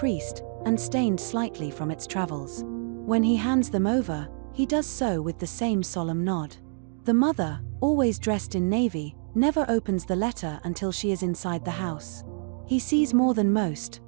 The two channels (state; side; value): silent; left; digital silence